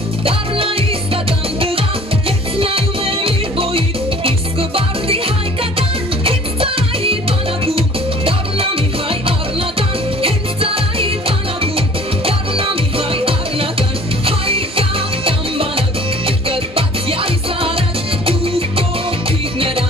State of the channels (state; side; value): normal; both; correlation 0.49